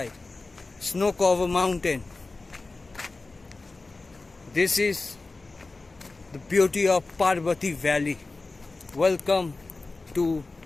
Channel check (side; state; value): right; quieter; 3.5 dB